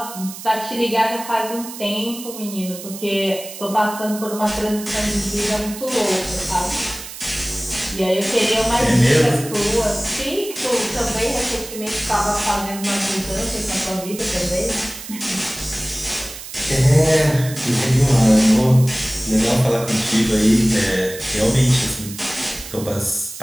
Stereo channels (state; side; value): noise; right; hiss, 12 dB below the sound